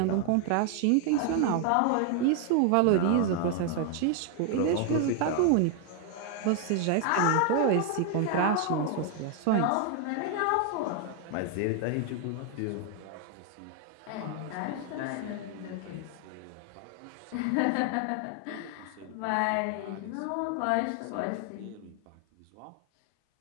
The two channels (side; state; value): both; different; correlation 0.00